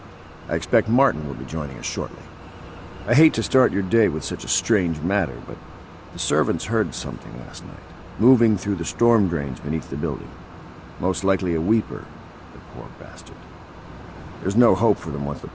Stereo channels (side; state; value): both; identical; correlation 1.00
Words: I expect Martin will be joining us shortly. I hate to start your day with such a strange matter, but the servants heard something last night, moving through the storm drains beneath the building. Most likely a weeper, the poor bastard. There's no hope for them once the